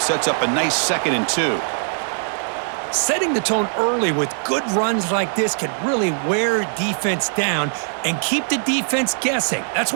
Sets up a nice 2nd and 2. Setting the tone early with good runs like this can really wear defense down and keep the defense guessing. That's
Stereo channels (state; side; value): silent; left; 65 dB below the other